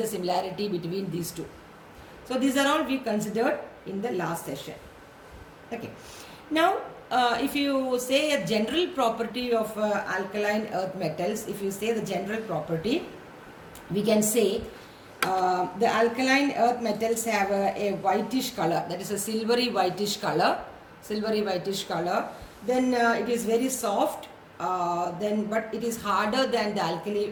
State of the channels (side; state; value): both; identical; correlation 1.00